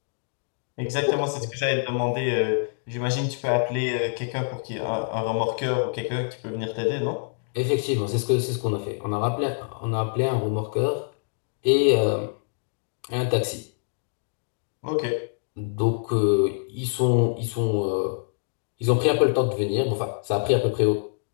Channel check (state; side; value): silent; right; digital silence